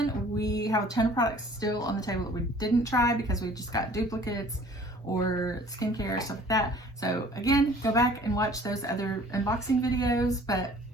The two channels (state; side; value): normal; both; correlation 0.51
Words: we have a ton of products still on the table that we didn't try because we just got duplicates or skincare, stuff like that. So again, go back and watch those other unboxing videos. But